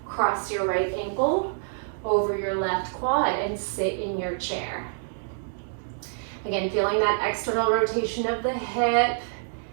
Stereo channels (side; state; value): left; silent; digital silence